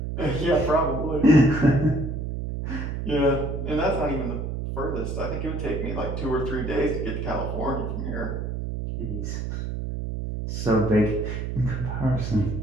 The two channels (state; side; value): noise; right; hum, 4 dB below the sound